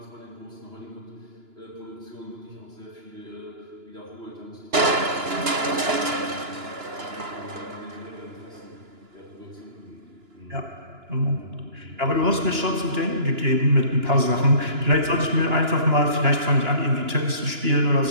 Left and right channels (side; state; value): left; late; 2.9 ms